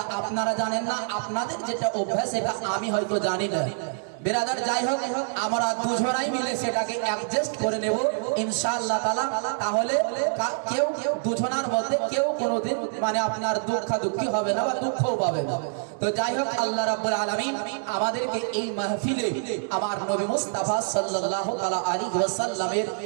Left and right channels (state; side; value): silent; left; digital silence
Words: আপনারা জানেন না, আপনাদের যেটা অভ্যাস এটা আমি হয়তো জানি না। বিরাদার, যাই হোক, আমরা দুজনাই মিলে সেটাকে অ্যাডজাস্ট করে নেব ইনশাআল্লাহ তাআলা। তাহলে কেউ দুজনার মধ্যে কেউ কোনোদিন মানে আপনার দুঃখী হবে না বা দুঃখও পাবে না। তো যাই হোক, আল্লাহ রাব্বুল আলামিন আমাদেরকে এই মাহফিলে আমার নবী মুস্তাফা সাল্লাল্লাহু তাআলা আলাইহি ওয়াসাল্লামের